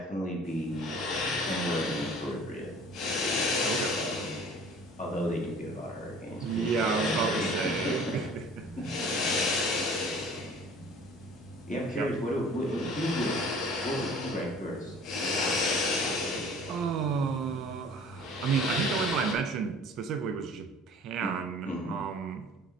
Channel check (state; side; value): normal; both; correlation 0.48